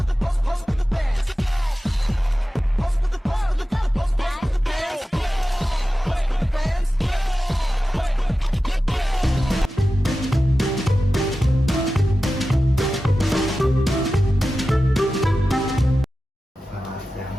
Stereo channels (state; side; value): normal; both; correlation 0.94